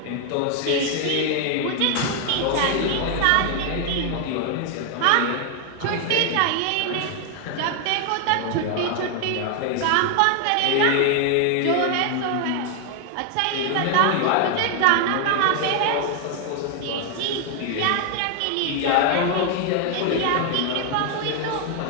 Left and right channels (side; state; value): both; different; correlation 0.00